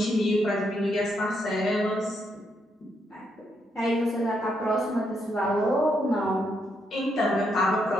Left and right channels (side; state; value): both; normal; correlation 0.78